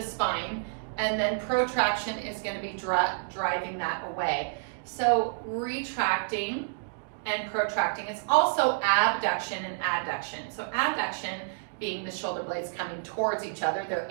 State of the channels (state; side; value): silent; left; digital silence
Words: spine, and then protraction is gonna be driving that away. So retracting and protracting. It's also abduction and adduction. So abduction being the shoulder blades coming towards each other, they're